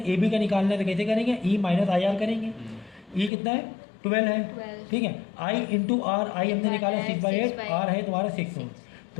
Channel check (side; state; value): right; drops out; at 3.3 s